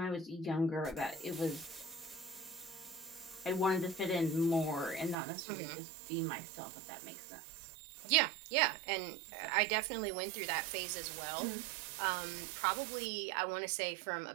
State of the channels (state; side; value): drops out; left; at 5.2 s